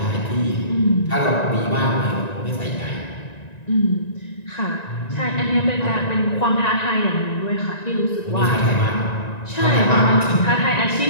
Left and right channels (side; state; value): right; late; 1.9 ms